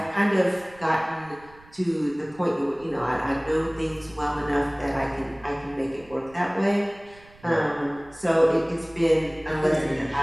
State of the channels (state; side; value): noise; right; rumble, 25 dB below the sound